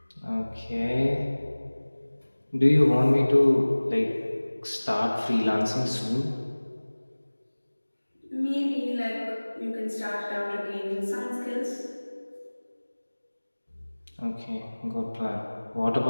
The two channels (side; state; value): both; inverted; correlation -1.00